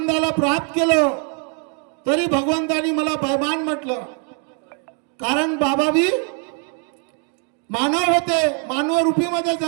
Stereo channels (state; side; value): quieter; left; 38.8 dB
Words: प्राप्त केलो, तरी भगवंतानी मला बेईमान म्हटलं। कारण बाबा भी मानव होते, मानव रूपीमध्ये